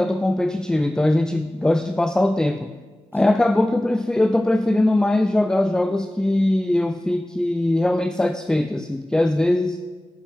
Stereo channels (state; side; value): normal; both; correlation 0.97